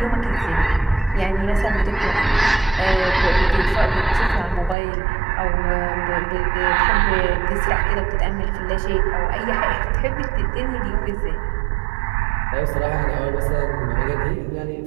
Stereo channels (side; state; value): left; drops out; at 4.8 s